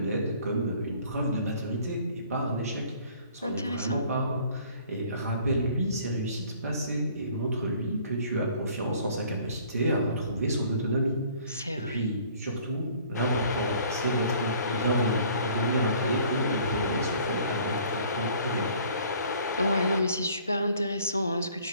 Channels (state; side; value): inverted; both; correlation -0.55